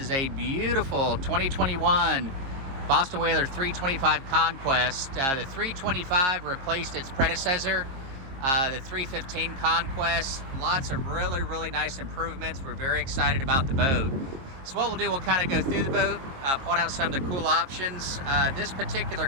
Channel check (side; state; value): left; late; 22 ms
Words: a beautiful 2021 Boston Whaler 325 Conquest. The 325 replaced its predecessor, the 315 Conquest. Lots of really nice improvements. We're very excited about the boat. So what we'll do, we'll kind of go through the boat, point out some of the cool options. This particular